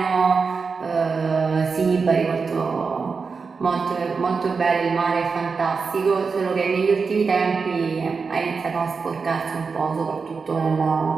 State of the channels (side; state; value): left; quieter; 5.0 dB